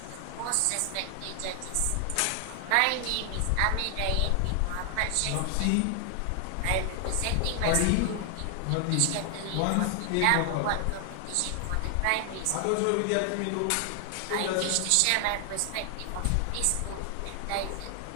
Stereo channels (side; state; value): both; different; correlation 0.00